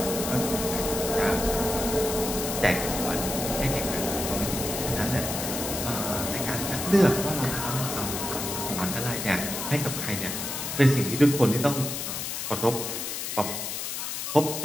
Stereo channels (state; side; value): noise; left; hiss, 4 dB below the sound